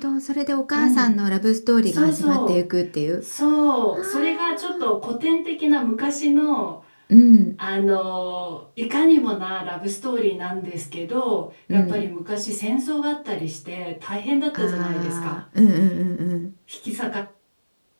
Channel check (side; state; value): both; inverted; correlation -1.00